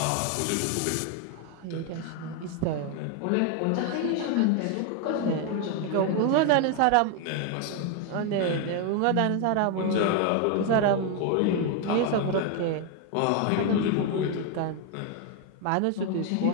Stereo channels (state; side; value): different; both; correlation 0.01